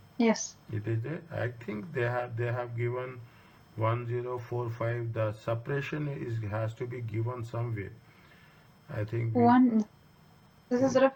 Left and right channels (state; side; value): identical; both; correlation 1.00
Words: Yes. It is there. I think they have given 1045. The suppression has to be given somewhere. I think this is